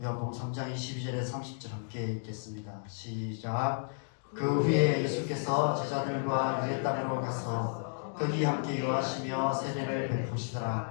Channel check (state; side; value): silent; right; digital silence